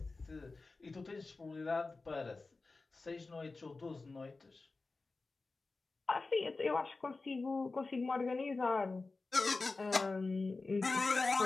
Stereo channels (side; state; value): right; quieter; 3.7 dB